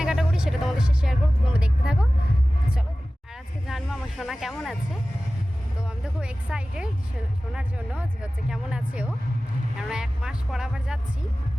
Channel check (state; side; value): normal; both; correlation 0.96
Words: করি সেটা তোমাদের সাথে শেয়ার করবো, তোমরা দেখতে থাকো। চলো, আর আজকে জানবো আমার সোনা কেমন আছে। তো আমি তো খুব এক্সাইটেড শোনার জন্য যে হচ্ছে কেমন আছে ও, কেননা 1 মাস পর আবার যাচ্ছি।